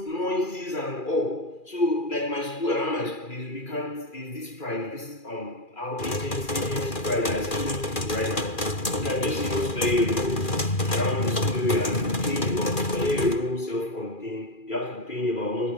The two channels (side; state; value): right; late; 2.4 ms